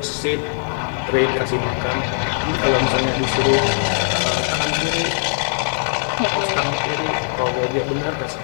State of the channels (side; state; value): right; silent; digital silence